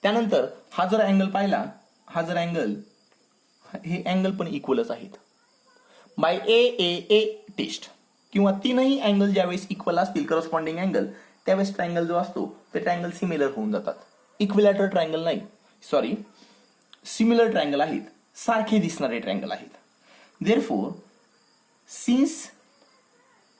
त्यानंतर हा जर अँगल पाहिला, हा जर अँगल, हे अँगल पण इक्वलच आहेत. बाय ए टेस्ट किंवा तीनही अँगल ज्यावेळेस इक्वल असतील करस्पॉन्डिंग अँगल, त्यावेळेस ट्रायंगल जो असतो ते ट्रायंगल सिमिलर होऊन जातात. इक्विलॅटरल ट्रायंगल नाही, सॉरी, सिमिलर ट्रायंगल आहेत, सारखे दिसणारे ट्रायंगल आहेत. Therefore since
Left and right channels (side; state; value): both; identical; correlation 1.00